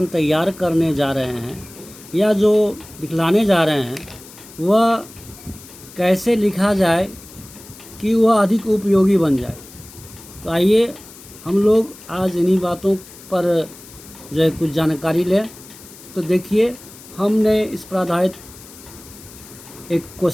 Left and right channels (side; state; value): left; noise; hiss, 19 dB below the sound